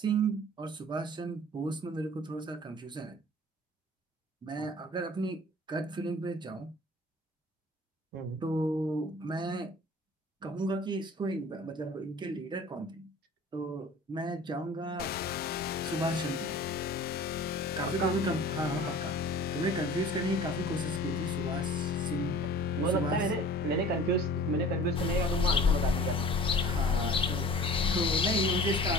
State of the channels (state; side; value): normal; both; correlation 0.44